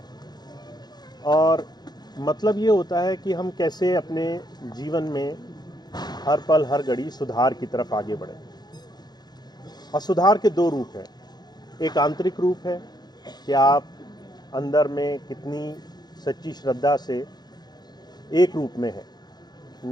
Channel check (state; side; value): late; right; 0.20 ms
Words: और मतलब ये होता है कि हम कैसे अपने जीवन में हर पल हर घड़ी सुधार की तरफ आगे बढ़ें। और सुधार के दो रूप हैं। एक आंतरिक रूप है कि आप अंदर में कितनी सच्ची श्रद्धा से एक रूप में है,